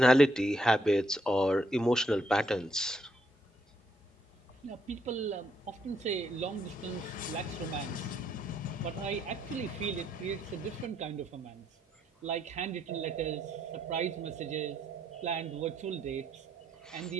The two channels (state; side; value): normal; both; correlation 0.74